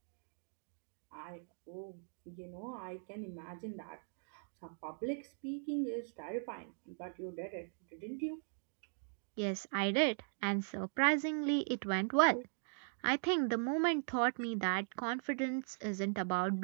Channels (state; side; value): silent; left; digital silence